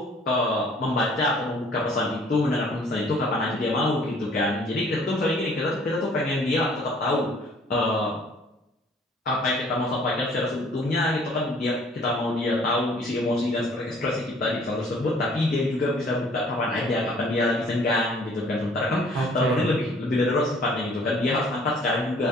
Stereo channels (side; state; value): both; normal; correlation 0.56